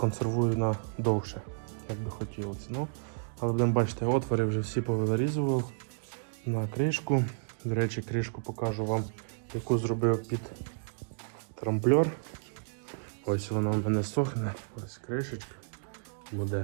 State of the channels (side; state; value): left; silent; digital silence